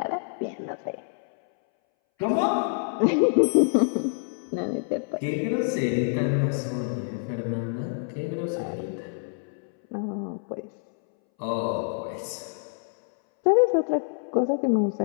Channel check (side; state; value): right; silent; 61 dB below the other